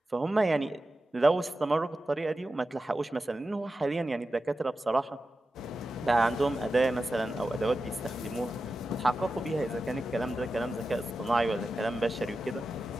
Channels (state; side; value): normal; both; correlation 0.92